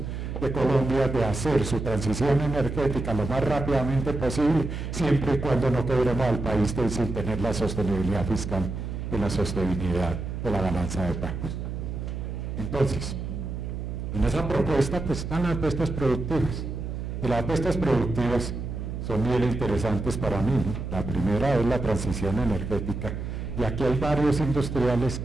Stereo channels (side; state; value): right; noise; hum, 5 dB below the sound